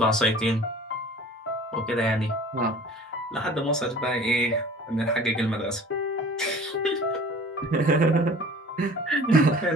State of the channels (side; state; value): both; normal; correlation 0.45